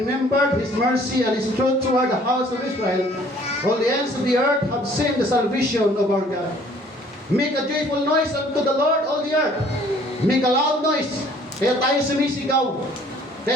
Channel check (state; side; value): normal; both; correlation 0.56